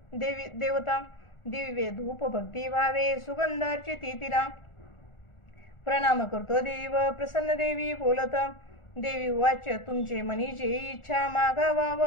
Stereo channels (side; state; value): right; late; 1.4 ms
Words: दिव्य धूप भक्ती भावे सुगंध अर्चिती तिला. प्रणाम करतो देव प्रसन्न देवी बोलत. देवी वाच तुमचे मनी जे इच्छा